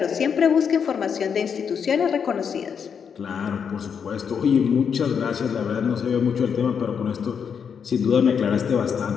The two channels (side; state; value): right; quieter; 7.0 dB